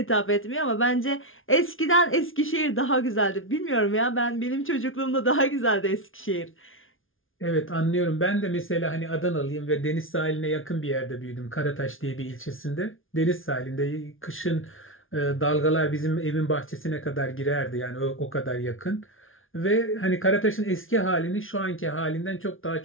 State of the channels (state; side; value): late; right; 0.59 ms